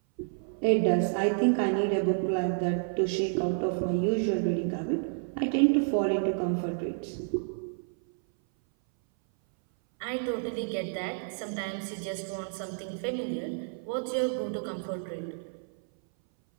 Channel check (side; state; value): left; silent; 58 dB below the other